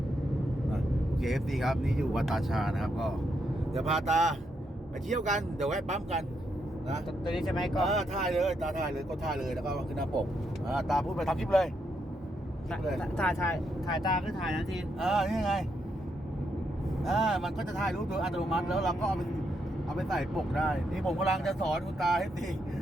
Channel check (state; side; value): normal; both; correlation 0.79